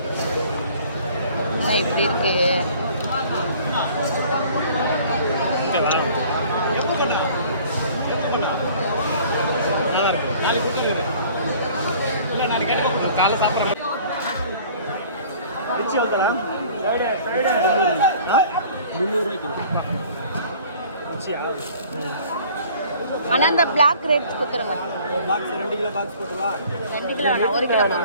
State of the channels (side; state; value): both; inverted; correlation -0.51